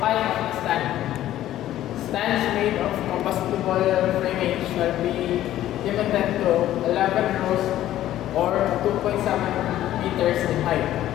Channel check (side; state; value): right; quieter; 13.2 dB